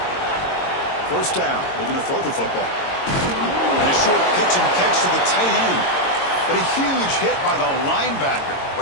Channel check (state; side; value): late; right; 22 ms